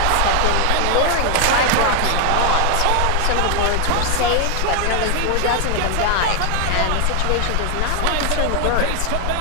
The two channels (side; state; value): both; different; correlation 0.00